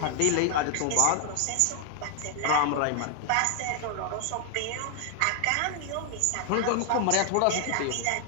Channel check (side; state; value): both; different; correlation 0.00